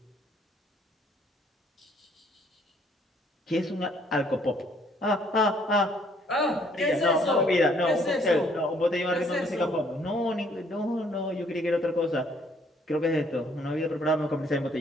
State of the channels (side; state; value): both; normal; correlation 0.64